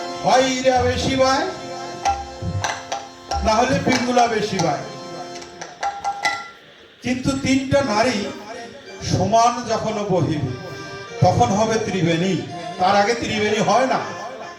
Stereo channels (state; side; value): identical; both; correlation 1.00